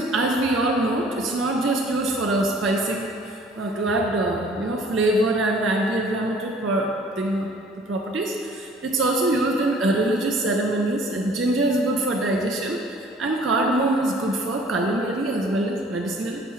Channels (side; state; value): both; normal; correlation 0.53